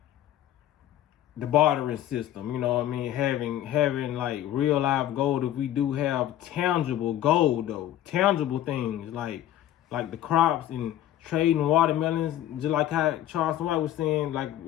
the bartering system, you know what I mean? Having like real life gold. If we do have tangible gold though, tangible things like the crops and trading watermelons, just like how Charles White was saying, like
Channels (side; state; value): right; quieter; 12.4 dB